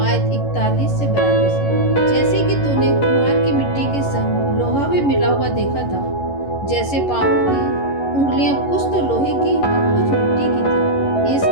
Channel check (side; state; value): right; late; 11 ms